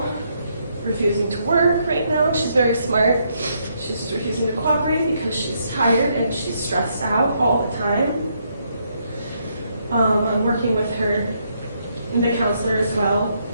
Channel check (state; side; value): inverted; both; correlation -0.75